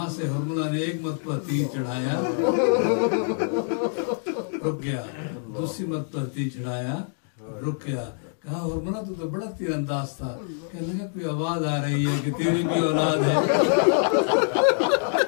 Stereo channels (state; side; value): silent; right; digital silence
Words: से हुर्मला ने एक मरतबा तीर चढ़ाया, रुक गया, दूसरी मरतबा तीर चढ़ाया, रुक गया। कहा हुर्मला तू तो बड़ा तीरंदाज था। कहने लगा कोई आवाज आ रही है कि तेरी भी औलाद है।